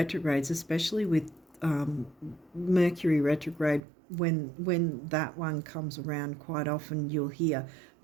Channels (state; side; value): drops out; left; at 3.8 s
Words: especially with Mercury retrograde, when that one comes around, quite often you'll hear,